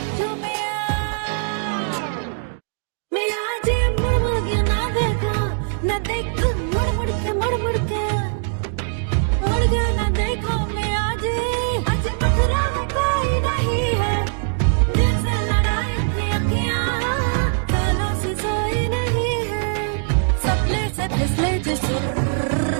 में मेरा आज मुड़ मुड़ के ना देखा, ना देखा मुड़ मुड़ के मुड़ मुड़ के मुड़ गया, ना देखा मैं आज मथुरा में कोई नहीं है, दिल से लड़ाई थी अखियां कालों से सोई नहीं है, सपने से फिसले जो सुर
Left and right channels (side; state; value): left; silent; digital silence